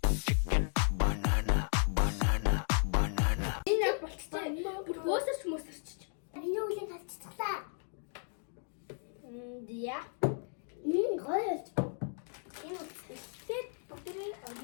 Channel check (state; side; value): silent; right; 55 dB below the other